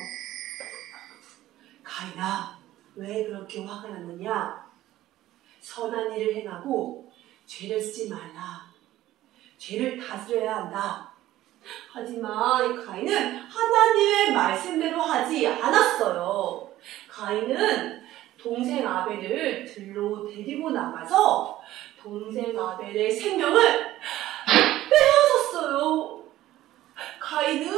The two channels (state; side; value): quieter; left; 14.8 dB